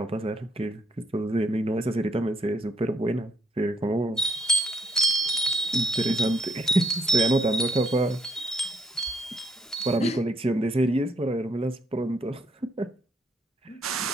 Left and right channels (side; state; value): both; normal; correlation 0.72